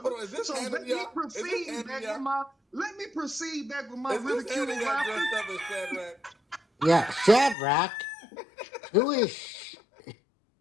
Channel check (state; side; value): drops out; right; at 7.6 s